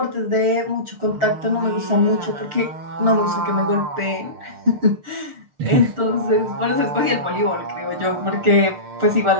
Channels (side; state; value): left; late; 6.6 ms